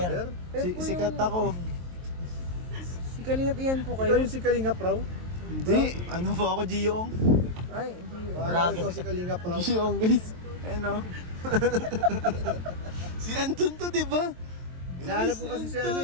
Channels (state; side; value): late; left; 23 ms